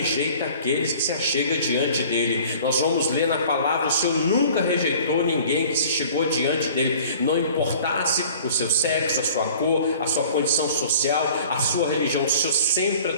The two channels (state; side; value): inverted; both; correlation -0.47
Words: aqueles que se achegam diante dele. Nós vamos ler na palavra: o Senhor nunca rejeitou ninguém que se chegou diante dele, não importasse o seu sexo, a sua cor, a sua condição social, a sua religião. O Senhor sempre